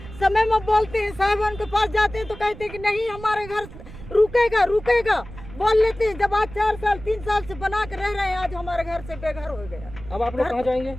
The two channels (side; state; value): right; noise; rumble, 15 dB below the sound